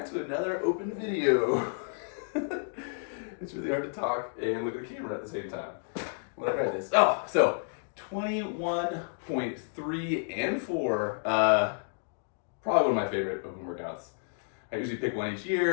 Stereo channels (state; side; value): silent; right; digital silence